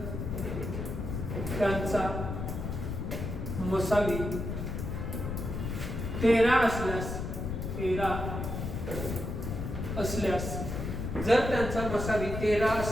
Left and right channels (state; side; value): noise; left; rumble, 4 dB below the sound